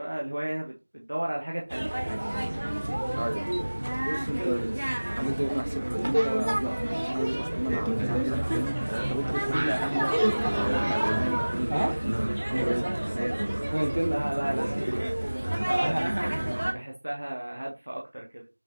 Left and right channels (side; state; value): both; inverted; correlation -1.00